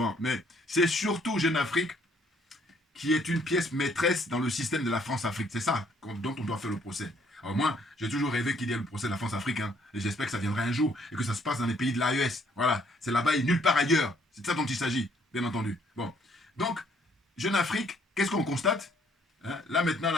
Mais c'est surtout Jeune Afrique qui est une pièce maîtresse dans le système de la France-Afrique. C'est ça dont on doit faire le procès. Alors moi, j'ai toujours rêvé qu'il y ait le procès de la France-Afrique, hein, et j'espère que ça viendra un jour, et que ça se passe dans les pays de l'AES. Voilà, c'est là-bas et nulle part ailleurs. C'est de ça dont il s'agit, bien entendu. Bon, donc, Jeune Afrique, qu'est-ce qu'on constate? Hein, là maintenant,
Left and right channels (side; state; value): both; normal; correlation 0.65